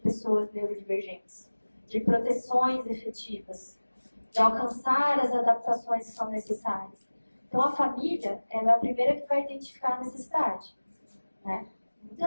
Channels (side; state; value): both; inverted; correlation -1.00